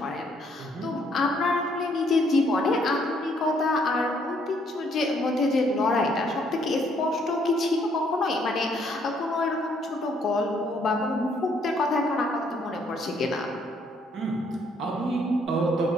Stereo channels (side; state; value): both; normal; correlation 0.68